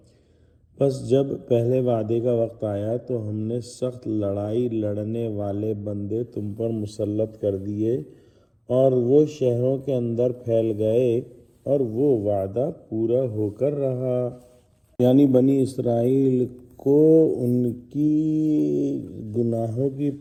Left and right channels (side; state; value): both; identical; correlation 1.00